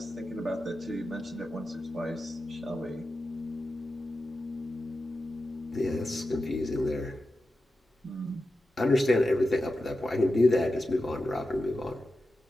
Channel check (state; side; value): normal; both; correlation 0.91